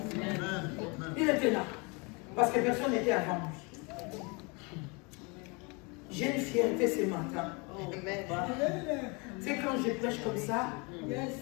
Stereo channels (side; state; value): right; quieter; 30.1 dB